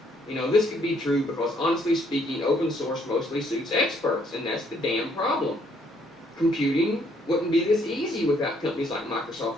This could be true because, honestly speaking, open source mostly suits experts, and that's the damn problem. Computing wouldn't be this easy without companies like Microsoft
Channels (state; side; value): normal; both; correlation 0.67